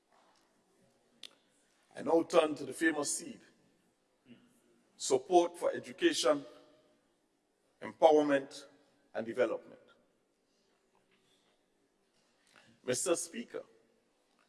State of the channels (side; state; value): both; identical; correlation 1.00